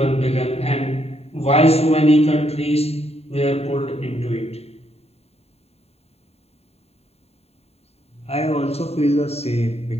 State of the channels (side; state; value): right; late; 0.30 ms